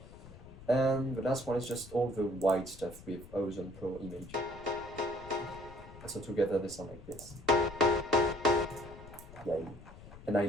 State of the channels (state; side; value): noise; left; rumble, 17 dB below the sound